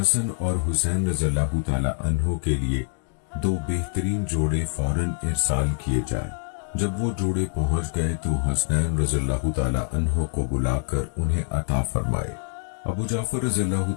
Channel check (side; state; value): right; silent; digital silence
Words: اور حسین رضی اللہ تعالی عنہ کے لیے 2 بہترین جوڑے فوراً ارسال کیے جائیں۔ جب وہ جوڑے پہنچ گئے تو حسنین رضی اللہ تعالی عنہ کو بلا کر انہیں عطا فرمائے۔ ابو جعفر رضی اللہ